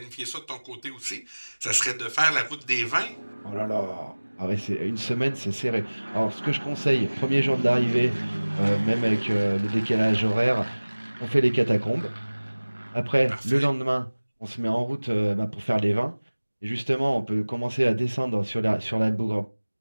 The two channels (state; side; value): inverted; both; correlation -1.00